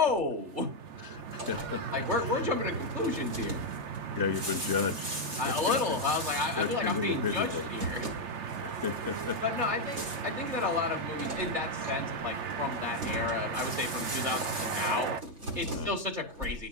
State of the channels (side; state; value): left; late; 3.3 ms